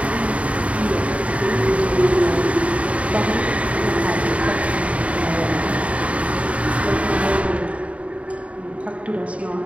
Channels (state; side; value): late; left; 0.065 ms